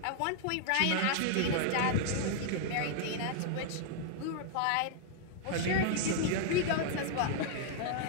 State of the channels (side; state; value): both; different; correlation -0.01